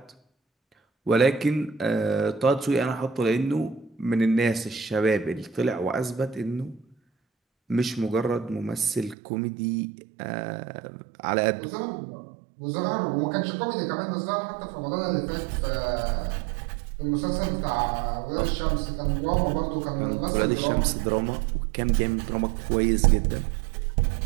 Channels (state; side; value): drops out; left; at 9.2 s